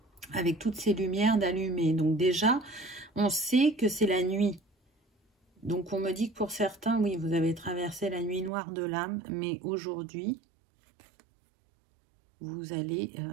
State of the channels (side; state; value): left; drops out; at 8.5 s